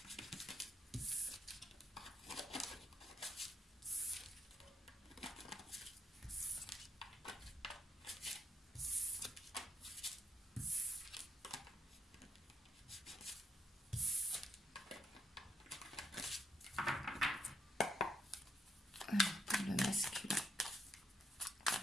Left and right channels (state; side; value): normal; both; correlation 0.75